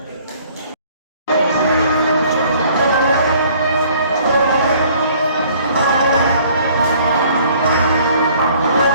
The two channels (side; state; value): both; inverted; correlation -0.57